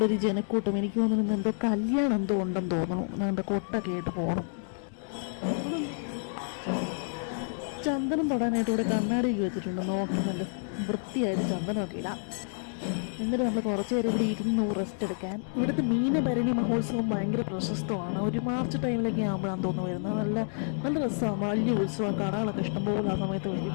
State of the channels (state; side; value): silent; right; digital silence